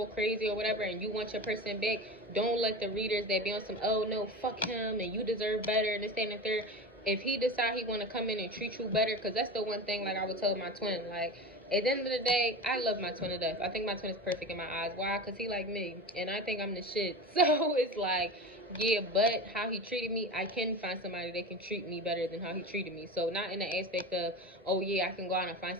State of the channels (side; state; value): both; normal; correlation 0.28